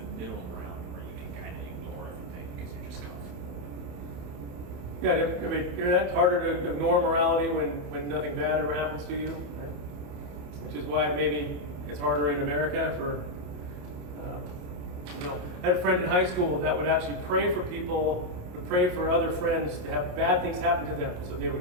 middle ground where you can kind of ignore everything because you're just comfortable. Yeah, I mean, it's harder to ignore morality when nothing bad ever happens to you, right? Which is why maybe it's harder in America for, I had a friend in high school that would actually pray for people, would pray for other friends to have bad things happen to them so they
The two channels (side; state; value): left; late; 28 ms